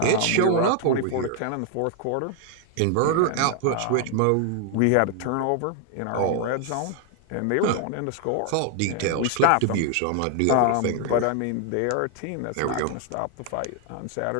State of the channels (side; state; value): both; different; correlation 0.00